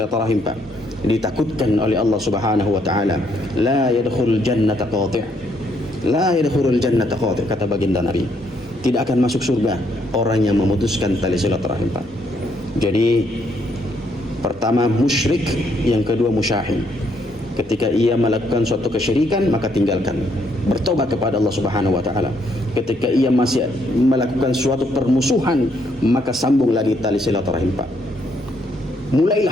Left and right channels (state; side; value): normal; both; correlation 0.72